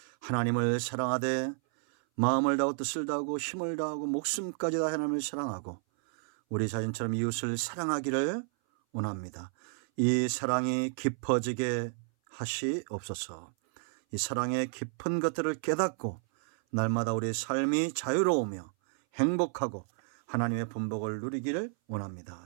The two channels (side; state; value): left; silent; 57 dB below the other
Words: 하나님을 사랑하되 마음을 다하고 뜻을 다하고 힘을 다하고 목숨까지 다 하나님을 사랑하고 우리 자신처럼 이웃을 사랑하기를 원합니다. 이 사랑이 깊어지게 하시옵소서. 이 사랑의 깊은 것들을 깨닫고 날마다 우리의 삶이 자유로우며 행복하고 하나님의 분복을 누리기를